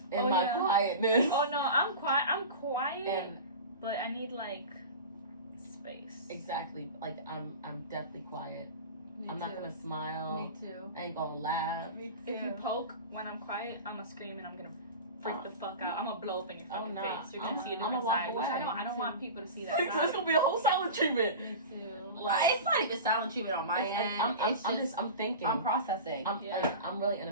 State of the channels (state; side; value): inverted; both; correlation -0.30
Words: in my quietness. Oh no, I'm quiet, but I need, like, space. Exactly. Like, I'm definitely quiet. I'm not gonna smile. Me too. I ain't gonna laugh. Me too. If you poke when I'm quiet, I'm gonna scream and I'm gonna freak the fuck out. I'm gonna blow up in your fucking face. You're gonna see a different side. Which I don't want people to see that side. It's gonna be a whole silent treatment. Me too. Like, it's not even silent treatment on my end. I'm thinking. I'm processing. I'm really